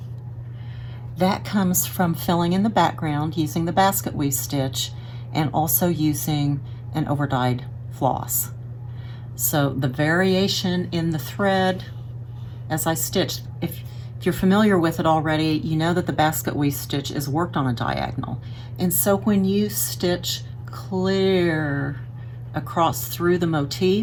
That comes from filling in the background using the basket weave stitch and also using an overdyed floss. So the variation in the thread as I stitch, if you're familiar with it already, you know that the basket weave stitch is worked on a diagonal. And so when you stitch clear across through the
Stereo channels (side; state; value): both; identical; correlation 1.00